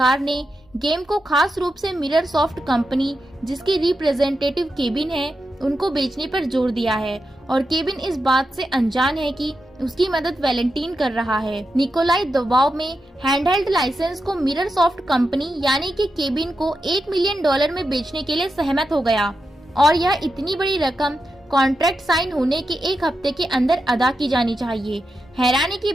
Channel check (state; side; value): normal; both; correlation 0.88